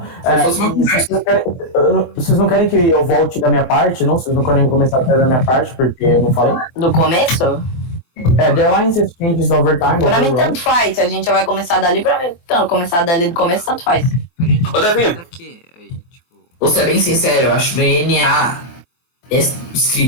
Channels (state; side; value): late; right; 23 ms